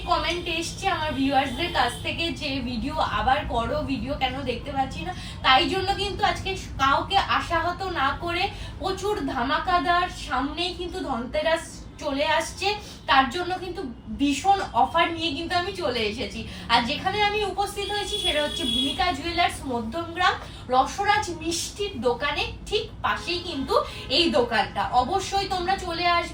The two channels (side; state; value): both; identical; correlation 1.00